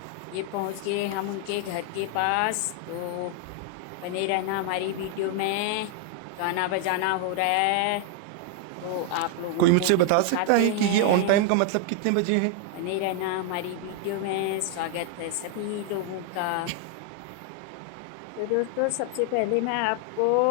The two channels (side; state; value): both; different; correlation 0.00